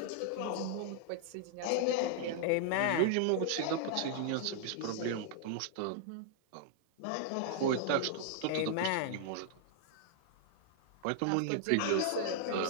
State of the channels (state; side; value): different; both; correlation -0.01